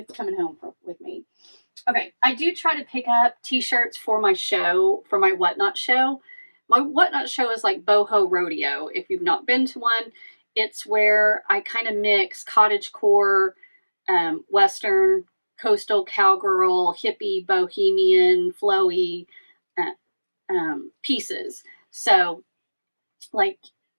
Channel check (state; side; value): inverted; both; correlation -1.00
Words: coming home with me. Okay, I do try to pick up t-shirts for my show, for my Whatnot show. My Whatnot show is like boho rodeo. If you've not been to one, it's where I kind of mix cottagecore, Western, coastal cowgirl, hippie, bohemian, flowy pieces. So, like,